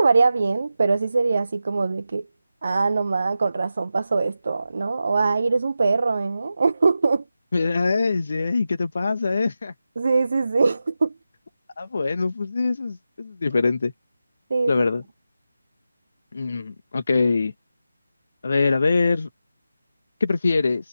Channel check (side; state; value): both; inverted; correlation -0.90